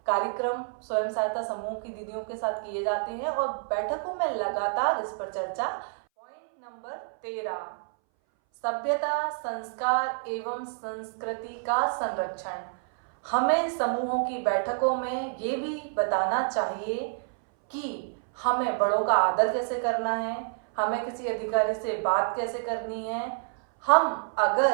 कार्यक्रम स्वयं सहायता समूह की दीदियों के साथ किए जाते हैं और बैठकों में लगातार इस पर चर्चा। पॉइंट नंबर 13, सभ्यता, संस्कार एवं संस्कृति का संरक्षण। हमें समूहों की बैठकों में ये भी बताना चाहिए कि हमें बड़ों का आदर कैसे करना है, हमें किसी अधिकारी से बात कैसे करनी है। हम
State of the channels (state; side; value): silent; left; 59 dB below the other